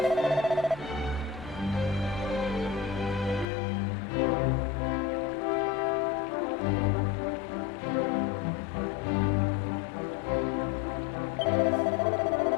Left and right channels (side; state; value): right; drops out; at 3.5 s